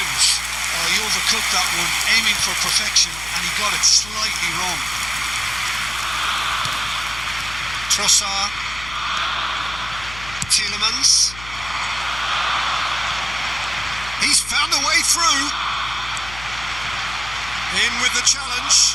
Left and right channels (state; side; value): noise; left; hum, 15 dB below the sound